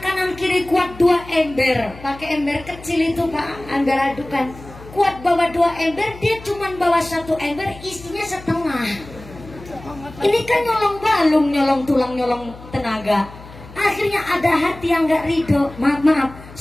kanan kiri kuat 2 ember, pakai ember kecil itu Pak, ember adukan. Kuat bawa 2 ember, dia cuma bawa 1 ember, isinya setengah. Ini kan nyolong balung, nyolong tulang, nyolong tenaga. Akhirnya ada hati yang gak ridho. Maaf,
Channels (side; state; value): left; noise; hum, 18 dB below the sound